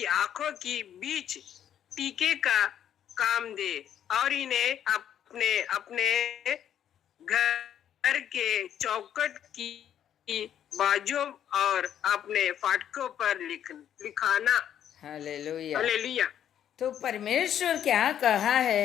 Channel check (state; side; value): quieter; right; 10.0 dB